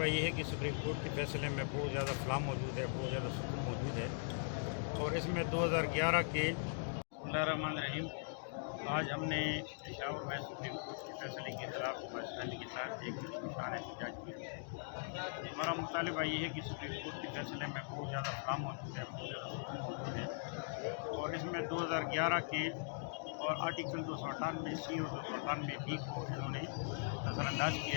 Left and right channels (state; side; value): silent; right; digital silence